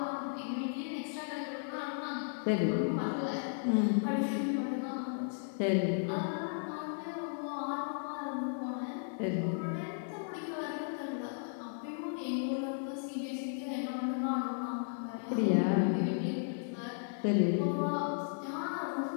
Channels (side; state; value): right; silent; digital silence